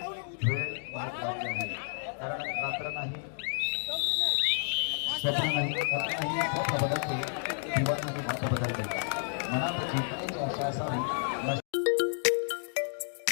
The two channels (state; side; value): silent; right; digital silence